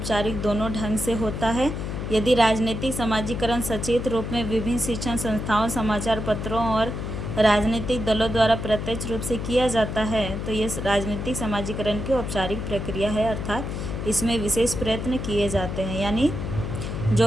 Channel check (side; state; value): left; noise; hum, 5 dB below the sound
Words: दोनों ढंग से होता है। यदि राजनीतिक समाजीकरण सचेत रूप में विभिन्न शिक्षण संस्थाओं, समाचार पत्रों और राजनीतिक दलों द्वारा प्रत्यक्ष रूप से किया जाता है तो ये राजनीतिक समाजीकरण की औपचारिक प्रक्रिया है, अर्थात इसमें विशेष प्रयत्न किए जाते हैं। यानी